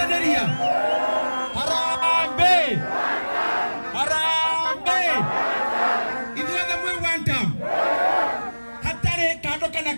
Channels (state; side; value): inverted; both; correlation -1.00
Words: Harambee. Ithuothe mwĩ one time. Hatarĩ kando kana